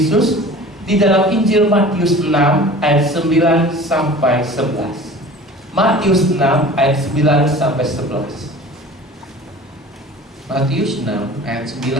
di dalam Injil Matius 6 ayat 9 sampai 11. Matius 6 ayat 9 sampai 11. Matius 6 ayat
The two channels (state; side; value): normal; both; correlation 0.41